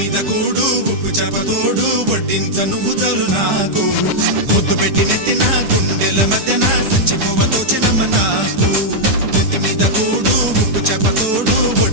కూడు ఉప్పు చేపతోడు వడ్డించ నువ్వు చాలు నాకు ముద్దు పెట్టి నెత్తిన గుండెల మధ్యన సంచిపోవతో చిన్నమ్మ నాకు ఇంటి మీద కూడు ఉప్పు చేపతోడు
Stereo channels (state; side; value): late; left; 9.8 ms